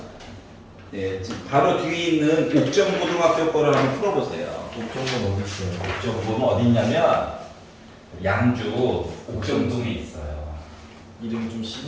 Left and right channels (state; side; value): identical; both; correlation 1.00